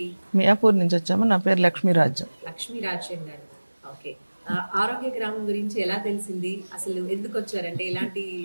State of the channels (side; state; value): both; inverted; correlation -1.00